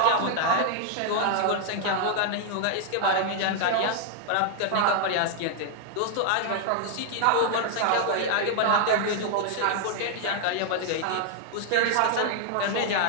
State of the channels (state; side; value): different; both; correlation 0.00